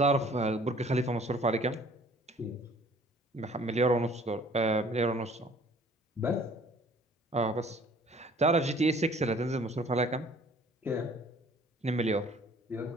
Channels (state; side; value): normal; both; correlation 0.54